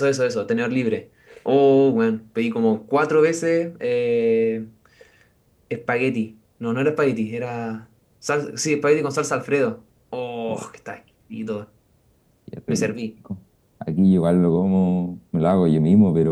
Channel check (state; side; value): identical; both; correlation 1.00